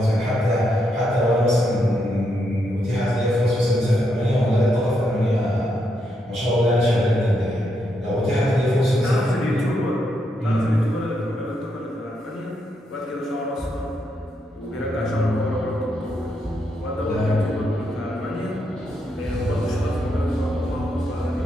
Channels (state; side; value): normal; both; correlation 0.80